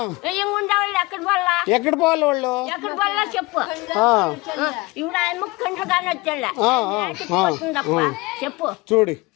ఉండేవాళ్ళు ఎక్కడ పోవాలి వాళ్ళు ఎక్కడ పోవాలా చెప్పు. ఇప్పుడు ఆయన కండ్రుగానే వచ్చాళ్ళ చెప్పు చూడు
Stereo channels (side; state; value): right; quieter; 23.4 dB